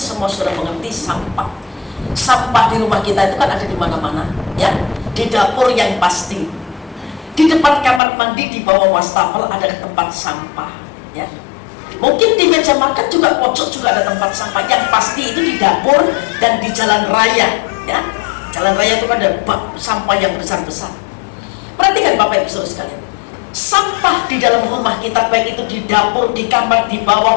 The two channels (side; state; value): right; drops out; at 8.0 s